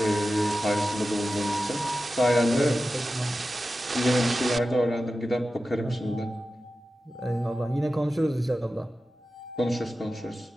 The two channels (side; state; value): both; normal; correlation 0.93